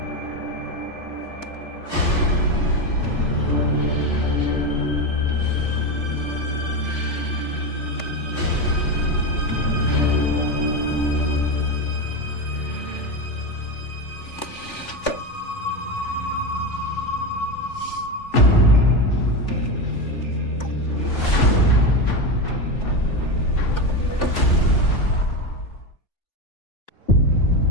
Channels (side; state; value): right; late; 3.4 ms